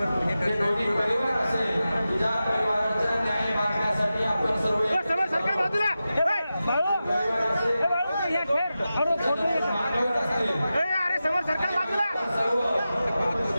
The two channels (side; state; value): both; inverted; correlation -0.93